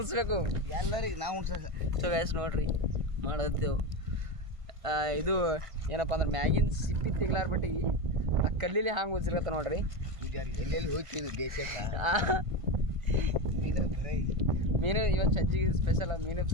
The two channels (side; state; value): left; late; 1.5 ms